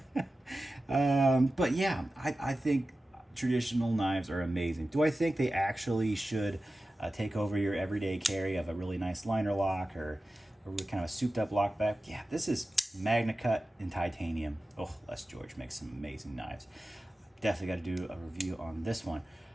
But yeah, I think traditional knives are amazing. Do I think they actually should take over your everyday carry of a really nice liner lock or kind of a souped up lock back? Yeah, this is Magna Cut in titanium. Oh, Les George makes some amazing knives. Definitely got to do a review on this one.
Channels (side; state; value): both; normal; correlation 0.94